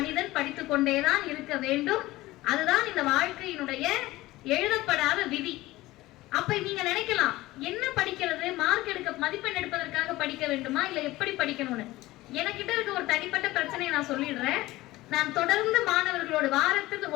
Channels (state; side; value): quieter; right; 18.1 dB